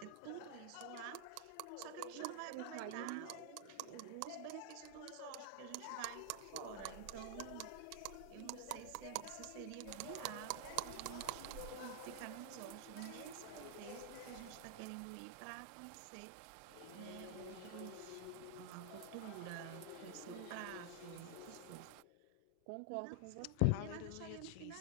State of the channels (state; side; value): different; both; correlation -0.01